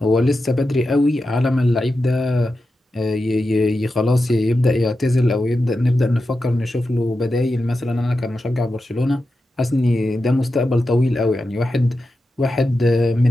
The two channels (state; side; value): normal; both; correlation 0.90